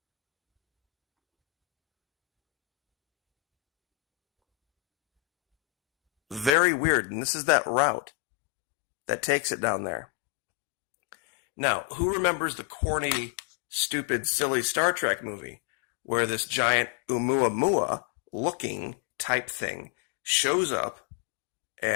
Very weird, and this is that route that takes it down there. Now, who remembers the corny, stupid, silly Star Trek movie where this giant Oumuamua looking type thing shows up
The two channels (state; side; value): drops out; right; at 6.5 s